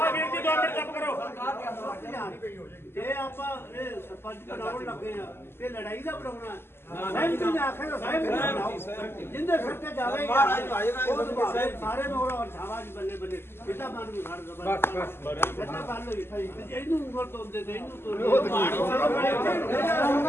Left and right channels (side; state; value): right; late; 0.12 ms